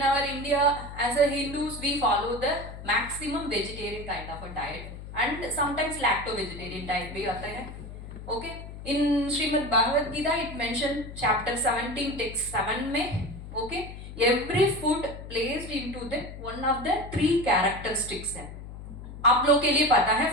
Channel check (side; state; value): left; noise; hum, 12 dB below the sound